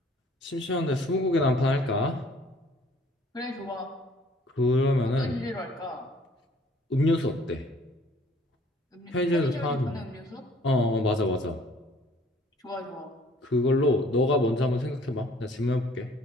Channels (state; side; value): normal; both; correlation 0.57